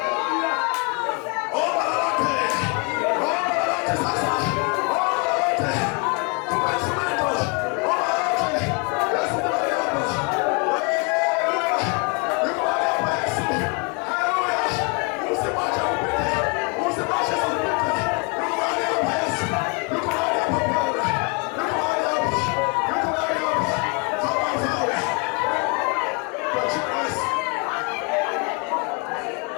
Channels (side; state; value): right; quieter; 33.8 dB